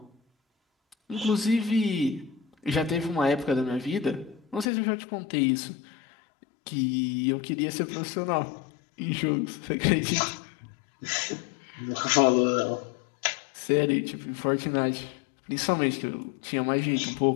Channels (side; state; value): right; drops out; at 4.7 s